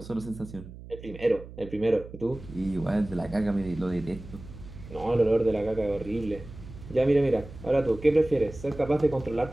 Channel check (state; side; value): noise; right; hum, 15 dB below the sound